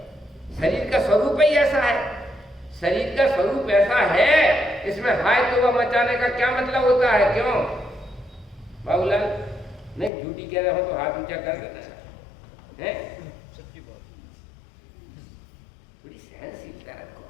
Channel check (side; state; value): right; drops out; at 10.1 s